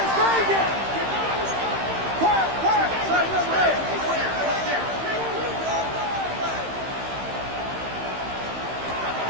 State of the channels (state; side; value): late; left; 15 ms